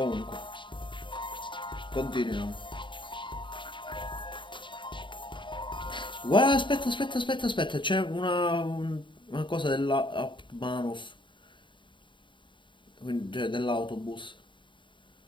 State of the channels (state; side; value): late; right; 0.23 ms